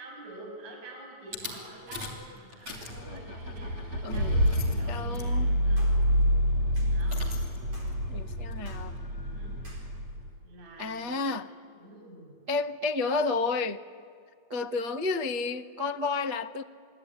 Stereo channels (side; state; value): left; late; 8.7 ms